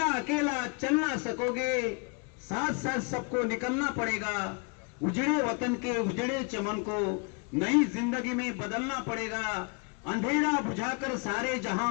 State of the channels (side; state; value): right; quieter; 34.9 dB